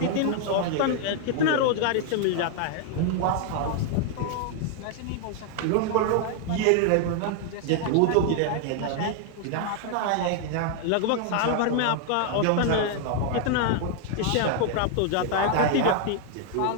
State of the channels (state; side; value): different; both; correlation 0.00